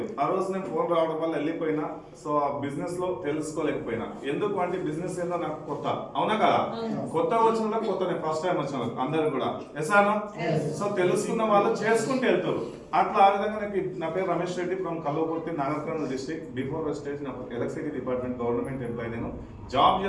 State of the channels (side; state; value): both; identical; correlation 1.00